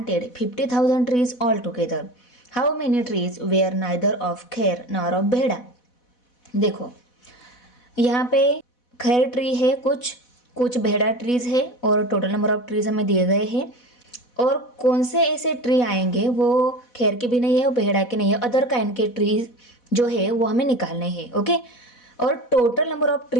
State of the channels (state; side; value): late; right; 4.1 ms